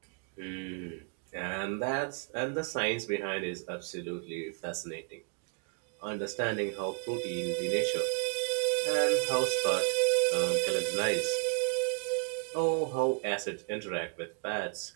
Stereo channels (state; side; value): quieter; left; 35.9 dB